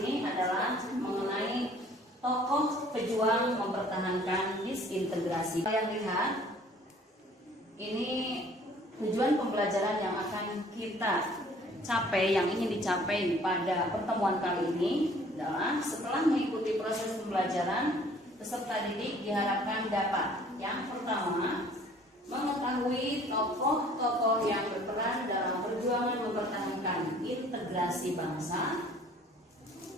adalah mengenai tokoh pejuang mempertahankan disintegrasi. Kalian lihat, ini tujuan pembelajaran yang akan kita capai, yang ingin dicapai pada pertemuan kali ini adalah setelah mengikuti proses pembelajaran, peserta didik diharapkan dapat yang pertama mengetahui tokoh-tokoh yang berperan dalam perjuangan mempertahankan integrasi bangsa,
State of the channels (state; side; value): normal; both; correlation 0.54